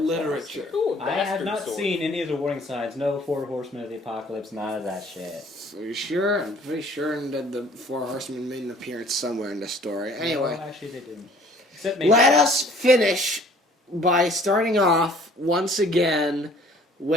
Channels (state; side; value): normal; both; correlation 0.55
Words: literature. Ooh, I have bastard not sword. seen any of the warning signs. No four horsemen of the apocalypse. None of that shit. Are you sure? I'm pretty sure that the Four Horsemen made an appearance somewhere in the story. Anyway, No, actually, they didn't. Except maybe. let us finish by starting off once again